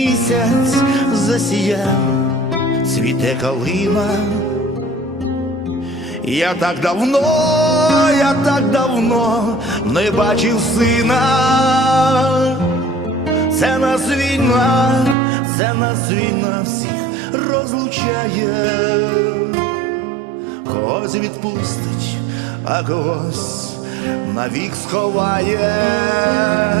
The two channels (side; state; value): left; drops out; at 15.2 s